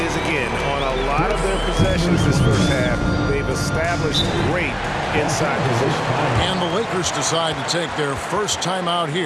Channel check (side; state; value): both; identical; correlation 1.00